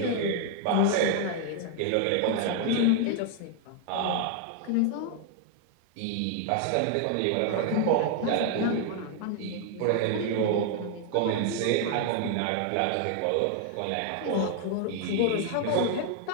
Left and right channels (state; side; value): different; both; correlation 0.00